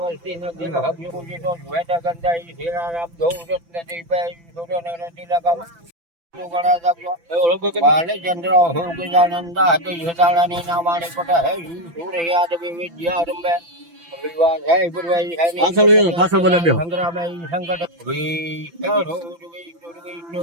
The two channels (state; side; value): late; left; 5.9 ms